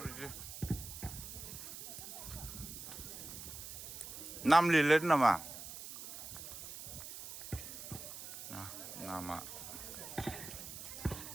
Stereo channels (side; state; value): right; noise; hiss, 10 dB below the sound